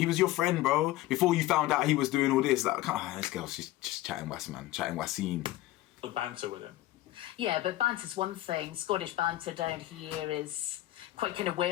was your friend, bro. Before you found out he was doing all this, like, this girl's just chatting was, man, chatting waseen. The banter with him. Yeah, but banter's one thing. Scottish banter down here is quite kind of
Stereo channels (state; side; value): quieter; right; 16.1 dB